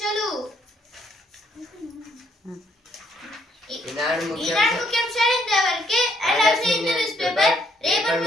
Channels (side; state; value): both; normal; correlation 0.70